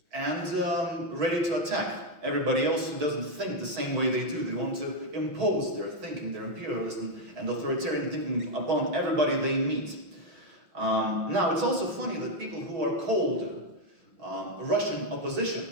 and ready to attack everybody else who doesn't think the same way they do. They want to impose their thinking, their imperialism and authoritarian thinking upon everybody they meet. Now, it's also funny that people who are called Russian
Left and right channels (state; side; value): late; left; 5.8 ms